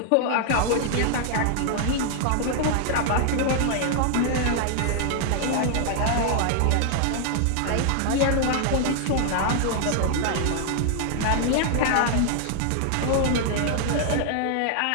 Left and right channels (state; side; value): different; both; correlation 0.00